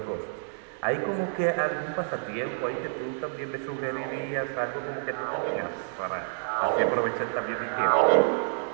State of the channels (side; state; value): left; silent; digital silence